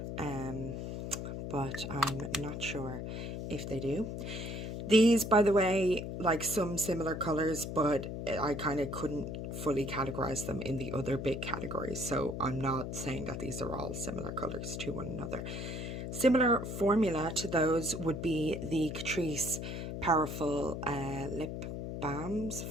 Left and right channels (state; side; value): noise; left; hum, 5 dB below the sound